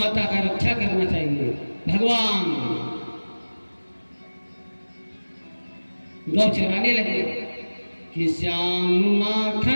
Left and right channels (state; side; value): inverted; both; correlation -1.00